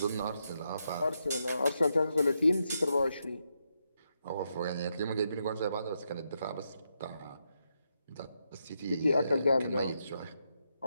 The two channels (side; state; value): both; inverted; correlation -0.82